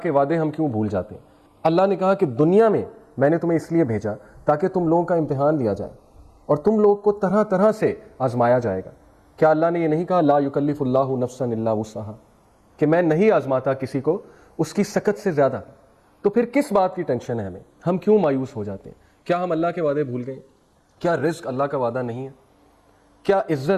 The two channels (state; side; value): identical; both; correlation 1.00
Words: کے وعدے ہم کیوں بھول جاتے ہیں؟ اللہ نے کہا کہ دنیا میں نے تمہیں اس لیے بھیجا تاکہ تم لوگوں کا امتحان لیا جائے اور تم لوگ کو طرح طرح سے آزمایا جائے گا. کیا اللہ نے یہ نہیں کہا لا یکلف اللہ نفسا الا وسعہا کہ میں نہیں آزماتا کسی کو اس کی سکت سے زیادہ؟ تو پھر کس بات کی ٹینشن ہے ہمیں؟ ہم کیوں مایوس ہو جاتے ہیں؟ کیا ہم اللہ کے وعدے بھول گئے؟ کیا رزق اللہ کا وعدہ نہیں ہے؟ کیا